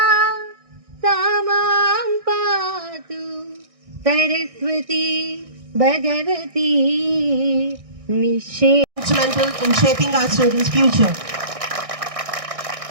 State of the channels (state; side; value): late; left; 1.6 ms